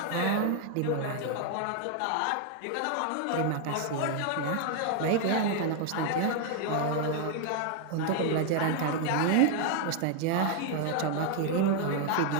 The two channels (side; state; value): both; different; correlation 0.00